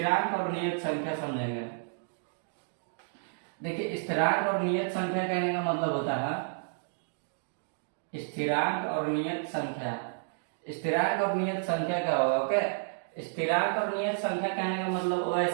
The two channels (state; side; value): silent; left; digital silence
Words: और नियत संख्या समझेंगे। देखिए स्थिरांक और नियत संख्या कहने का मतलब होता है, स्थिरांक और नियत संख्या, स्थिरांक और नियत संख्या क्या होगा, ओके। स्थिरांक और नियत संख्या कहने का मतलब वो